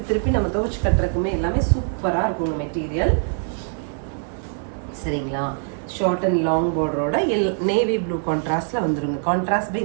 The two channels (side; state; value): left; silent; 62 dB below the other